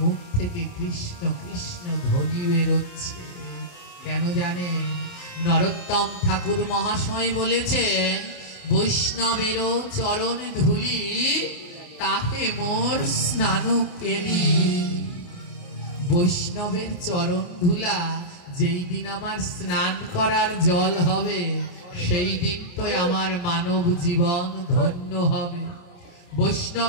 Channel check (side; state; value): right; late; 28 ms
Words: থেকে কৃষ্ণ কৃষ্ণ ধ্বনি বেরোচ্ছে। কেন জানেন? নরোত্তম ঠাকুর মহাশয় বলেছেন, বৈষ্ণবেরও চরণ ধুলি তাহে মোর স্নান কেলি। বৈষ্ণবের চরণ ধুলা যেই দিন আমার স্নান করার জল হবে, সেই দিন তো আমার মানব জীবন ধন্য হবে।